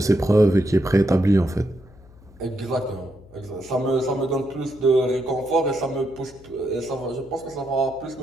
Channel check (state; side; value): noise; left; hum, 24 dB below the sound